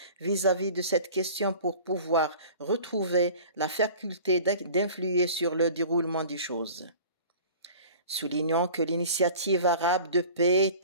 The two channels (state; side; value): inverted; both; correlation -0.43